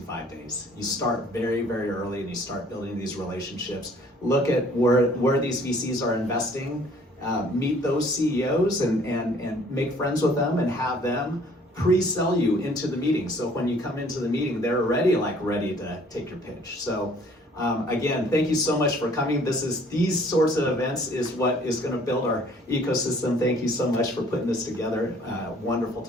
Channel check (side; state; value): both; normal; correlation 0.56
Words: days. You start very, very early and you start building these relationships. Look at where these VCs are investing, meet those CEOs and make friends with them and have them pre-sell you into the meeting. So when you come into the meeting, they're ready to take your pitch. So again, thank you so much for coming. These sorts of events is what is going to build our ecosystem. Thank you so much for putting this together. Wonderful